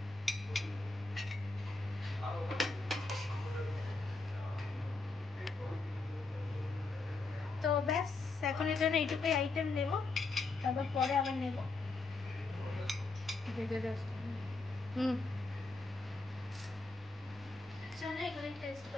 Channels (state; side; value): quieter; right; 3.7 dB